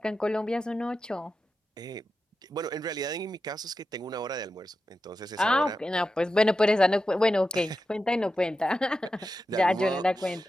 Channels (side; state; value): both; normal; correlation 0.91